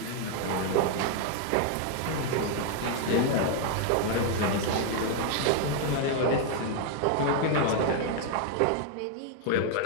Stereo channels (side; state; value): both; different; correlation 0.00